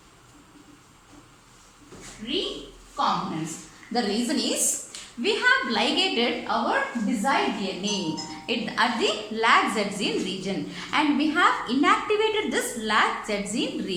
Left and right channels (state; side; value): identical; both; correlation 1.00